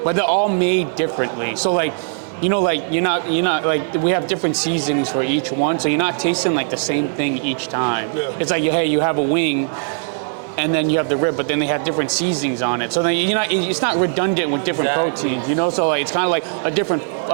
but they're all made differently. So, like, you know, like, you're not, like, we have different seasonings for each one, so you're not tasting, like, the same thing each time. Yeah. It's like, hey, you have a wing, and then you have the rib, but then they have different seasonings on it. So then it's not redundant with different proteins, you know? So like, it's kind of like a different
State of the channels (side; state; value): left; silent; digital silence